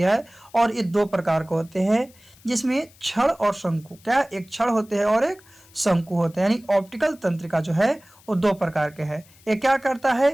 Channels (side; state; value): left; noise; hiss, 27 dB below the sound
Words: है, और ये 2 प्रकार के होते हैं जिसमें क्षण और शंकु। क्या? एक क्षण होते हैं और एक शंकु होते हैं। यानी ऑप्टिकल तंत्रिका जो है वो 2 प्रकार के हैं। ये क्या करता